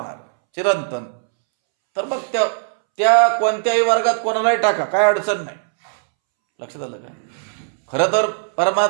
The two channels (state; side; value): silent; left; 66 dB below the other